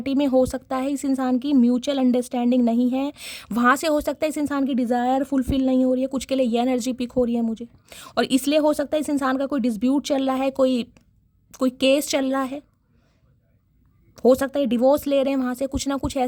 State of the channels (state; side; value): identical; both; correlation 1.00